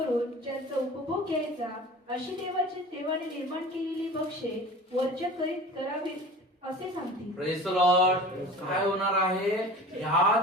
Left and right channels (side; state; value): both; normal; correlation 0.38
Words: ज्यांचा उपभोग घ्यायचा अशी देवाने निर्माण केलेली भक्ष्ये वर्ज्य करीत करावीत असे सांगतील. Praise the Lord. काय होणार आहे?